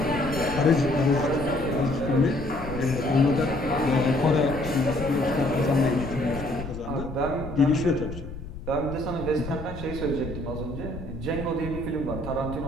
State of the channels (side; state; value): left; noise; rumble, 11 dB below the sound